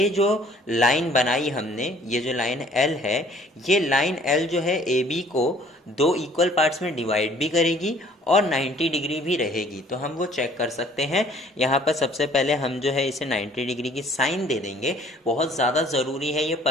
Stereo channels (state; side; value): normal; both; correlation 0.56